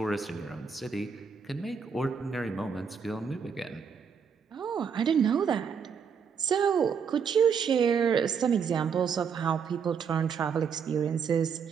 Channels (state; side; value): quieter; left; 6.5 dB